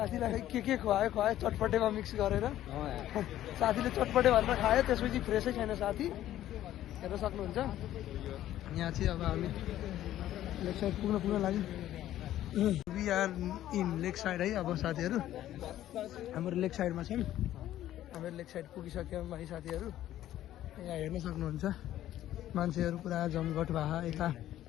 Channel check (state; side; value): quieter; right; 12.9 dB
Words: के खुवायो चटपटेमा मिक्स गरेर साथीले चटपटे भनेर खायो त्यसपछि फ्रेसै छैन साथी हेर्न सक्नुहुन्छ यहाँ चाहिँ अब हामी लेक साइड पुग्न लाग्यो we are in lake side है अब साथीहरू हाम्रो लेक साइडमा छौँ हाम्रो लेक साइड पुगिसक्यौँ है साथीहरू यहाँ हेर्न सक्नुहुन्छ मान्छेहरू पुरा जमघट भए यता